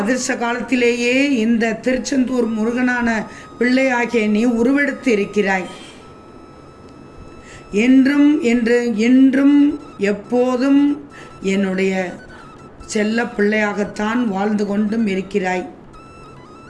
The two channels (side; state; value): both; identical; correlation 1.00